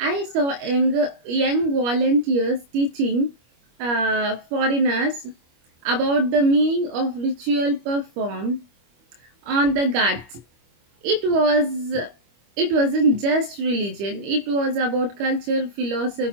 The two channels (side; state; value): left; late; 25 ms